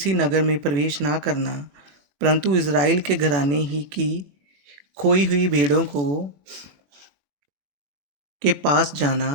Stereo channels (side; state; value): left; late; 21 ms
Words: नगर में प्रवेश ना करना, परंतु इज़राइल के घराने ही की खोई हुई भेड़ों को के पास जाना